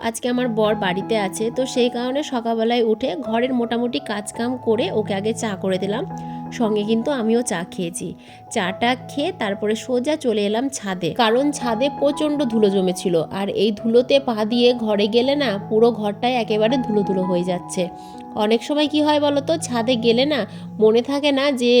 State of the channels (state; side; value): identical; both; correlation 1.00